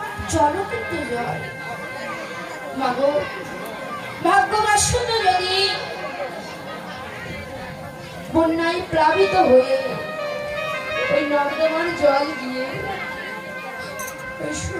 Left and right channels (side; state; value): both; identical; correlation 1.00